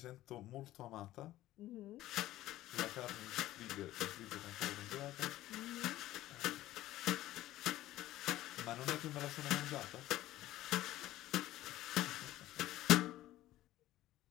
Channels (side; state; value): right; quieter; 15.1 dB